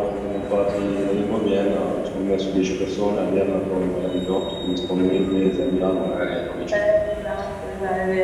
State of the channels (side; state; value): both; identical; correlation 1.00